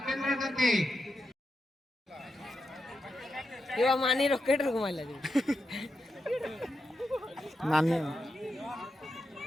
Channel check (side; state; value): both; normal; correlation 0.87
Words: मानी रॉकेट रुक मारला नानी